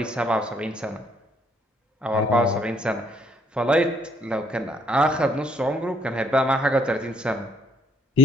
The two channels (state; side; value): normal; both; correlation 0.65